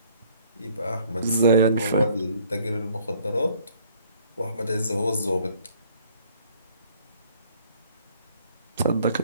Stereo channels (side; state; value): both; inverted; correlation -0.60